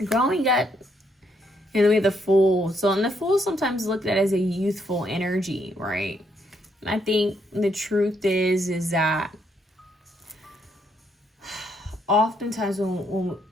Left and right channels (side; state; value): both; normal; correlation 0.74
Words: Growing up. And then we have the Fool. So, and the Fool is sometimes looked at as a youthful energy, right? I think the truth is that oftentimes when